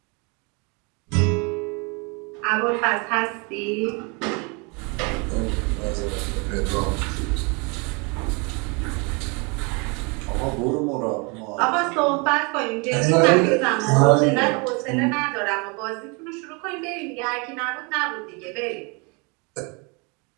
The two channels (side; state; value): left; quieter; 31.5 dB